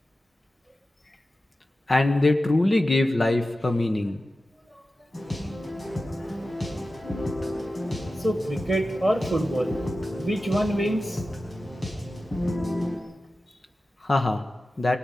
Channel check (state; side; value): normal; both; correlation 0.94